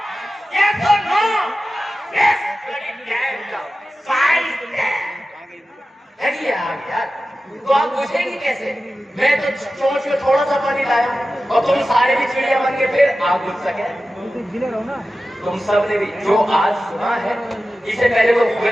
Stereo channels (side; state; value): both; normal; correlation 0.94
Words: यस और नो, यस। यार तो आप पूछेंगे कैसे? मैं तो चोंच में थोड़ा सा पानी लाया और तुम सारे भी चिड़िया बन के फिर आप बुझ सके। तुम सब ने भी जो आज सुना है, इसे पहले वो